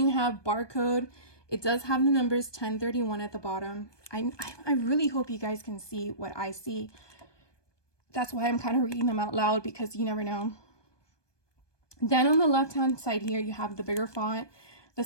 have barcode. It does have the numbers 1031 at the bottom. I really hope you guys can see what I see. That's why I'm kind of reading them out loud, because you never know. Then on the left-hand side here, you have the bigger font that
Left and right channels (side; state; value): right; late; 1.2 ms